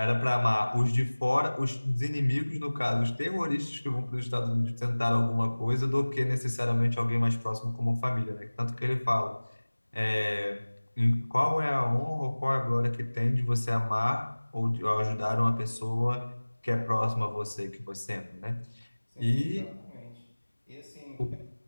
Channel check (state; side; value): inverted; both; correlation -1.00